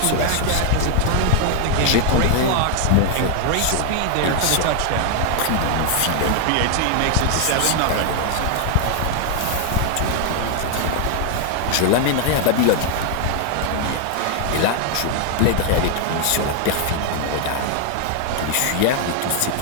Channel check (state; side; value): different; both; correlation 0.00